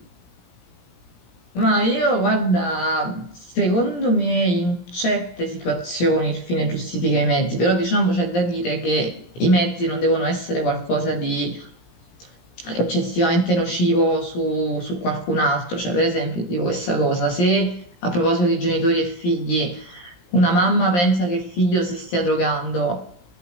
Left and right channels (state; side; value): late; right; 17 ms